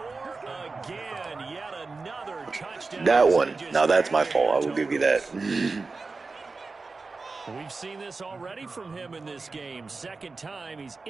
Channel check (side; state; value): left; quieter; 4.0 dB